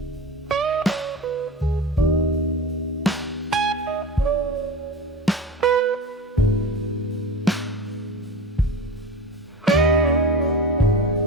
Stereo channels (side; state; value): both; normal; correlation 0.30